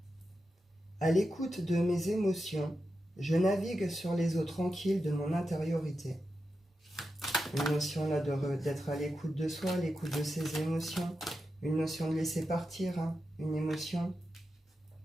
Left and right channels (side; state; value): both; normal; correlation 0.89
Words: À l'écoute de mes émotions, je navigue sur les eaux tranquilles de mon intériorité. Une notion là d'être à l'écoute de soi, à l'écoute de ses émotions. Une notion de laisser partir, une émotion.